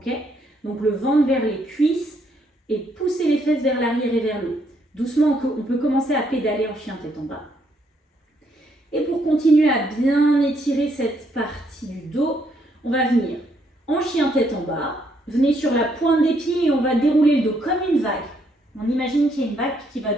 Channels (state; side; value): normal; both; correlation 0.72